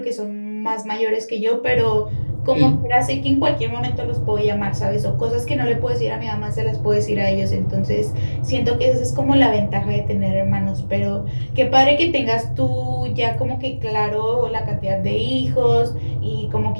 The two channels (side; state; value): both; inverted; correlation -1.00